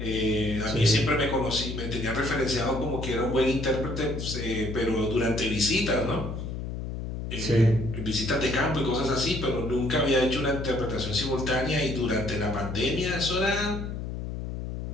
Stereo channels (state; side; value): noise; left; hum, 6 dB below the sound